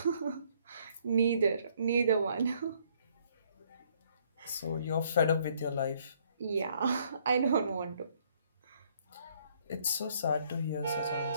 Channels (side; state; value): both; inverted; correlation -0.65